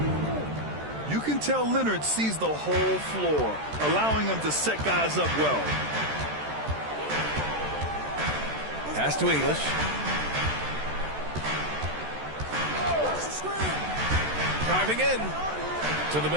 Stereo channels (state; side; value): late; left; 13 ms